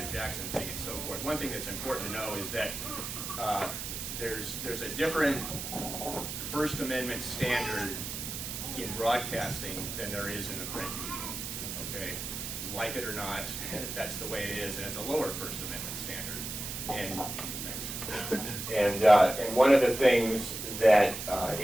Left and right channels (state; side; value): noise; right; hiss, 6 dB below the sound